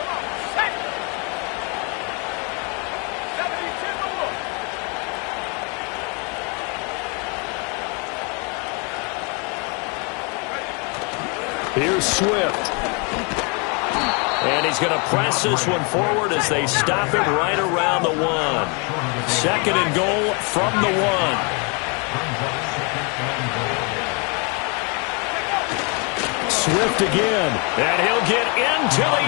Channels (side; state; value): right; quieter; 33.5 dB